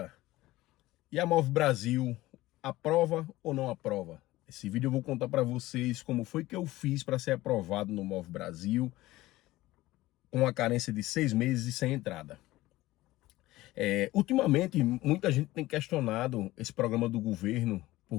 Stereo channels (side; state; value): right; quieter; 17.6 dB